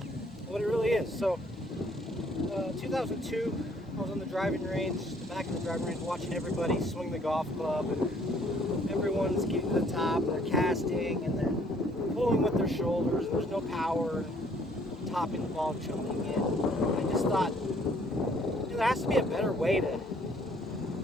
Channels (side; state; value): both; normal; correlation 0.62